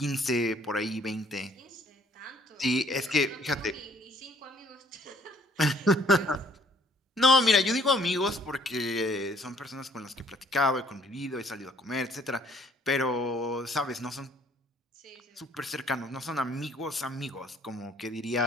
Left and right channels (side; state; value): both; normal; correlation 0.61